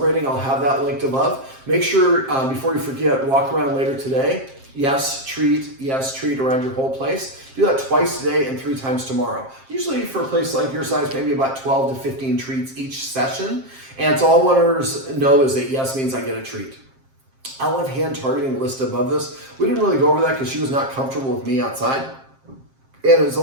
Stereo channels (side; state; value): left; late; 7.5 ms